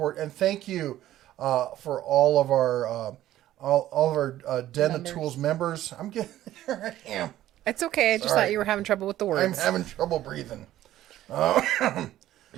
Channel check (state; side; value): quieter; left; 13.6 dB